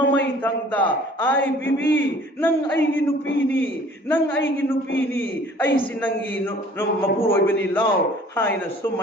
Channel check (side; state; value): both; normal; correlation 0.52